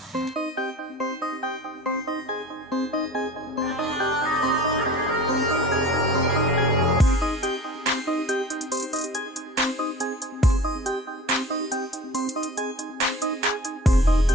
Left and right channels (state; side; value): normal; both; correlation 0.42